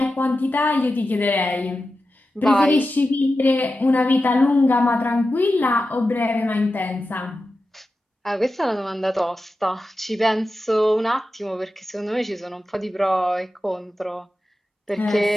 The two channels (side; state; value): both; normal; correlation 0.92